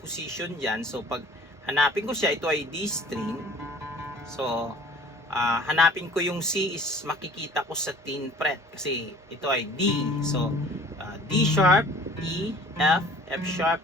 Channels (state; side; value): normal; both; correlation 0.49